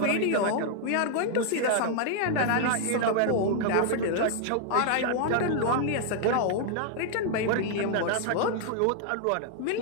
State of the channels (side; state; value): both; different; correlation 0.00